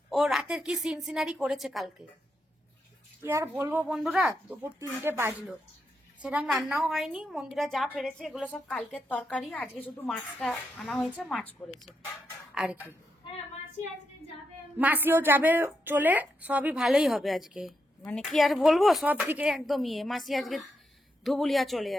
ও রাতের কি সিন সিনারি করেছে কালকে, কি আর বলবো বন্ধুরা। দুপুর 3টে বাজলো, সেরকম রান্নাও হয়নি, মন্দিরা যা পেরেছে এগুলো সব কালকের তরকারি, আজকে শুধু মাছটা আনা হয়েছে, মাছ করেছে আর কি। হ্যাঁ মাসি আজকে যাবে। মাসিও যাবে চলে, সবই ভালোই হবে আজকে, মানে কি আর বলবো, সব দিকে একদম ইয়ে। মাসি আজকে ধুবুলিয়া চলে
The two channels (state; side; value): normal; both; correlation 0.83